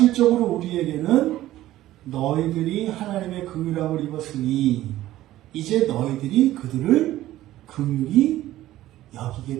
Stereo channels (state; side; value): quieter; left; 14.8 dB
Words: 우리에게는 너희들이 하나님의 긍휼함을 입었으니 이제 너희들이 그들을 긍휼히 여기게